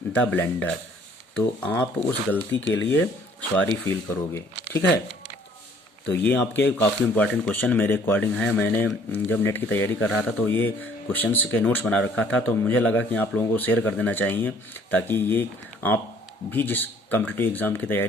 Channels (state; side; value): normal; both; correlation 0.58